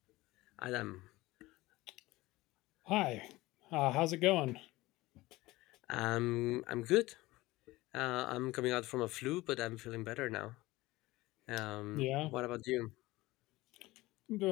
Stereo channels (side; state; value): right; quieter; 19.3 dB